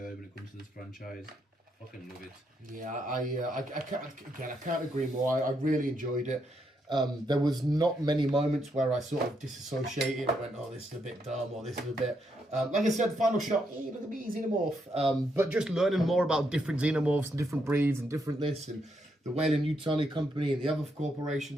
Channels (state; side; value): normal; both; correlation 0.78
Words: when it comes to this franchise. Fucking love it. Yeah, I can't agree more. I really enjoyed it. There was not many moments where I sort of disassociated and went, oh, this is a bit dumb, or this is a bit... like I said, final shot, look at me, xenomorph. But just learning more about different xenomorphs and different breeds and different this, and the Weyland-Yutani Company and the other